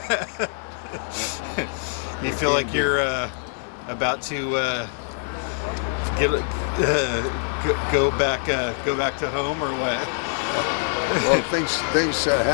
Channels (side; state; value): right; silent; 62 dB below the other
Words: You feel like you're about to go back to home or what? Well, things